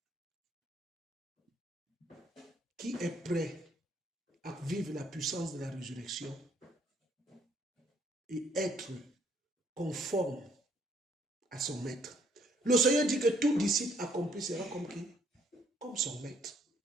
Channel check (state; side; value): normal; both; correlation 0.66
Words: Qui est prêt à vivre la puissance de la résurrection et être conforme à son maître? Le Seigneur dit que tout disciple accompli sera comme qui? Comme son maître.